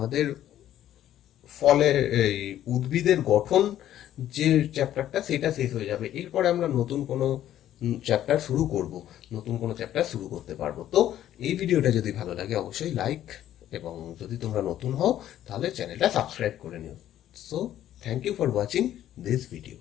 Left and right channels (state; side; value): quieter; right; 12.0 dB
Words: ফলের, এই উদ্ভিদের গঠন যে চ্যাপ্টারটা, সেটা শেষ হয়ে যাবে। এরপরে আমরা নতুন কোনো চ্যাপ্টার শুরু করব, নতুন কোনো চ্যাপ্টার শুরু করতে পারবো। তো এই ভিডিওটা যদি ভালো লাগে অবশ্যই লাইক, এবং যদি তোমরা নতুন হও তাহলে চ্যানেলটা সাবস্ক্রাইব করে নিও। So thank you for watching this video.